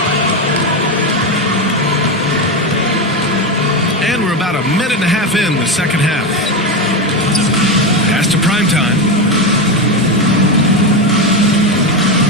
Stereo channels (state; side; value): normal; both; correlation 0.13